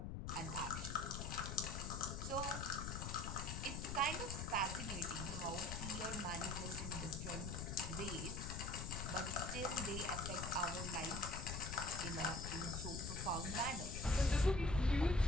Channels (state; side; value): noise; left; rumble, 4 dB below the sound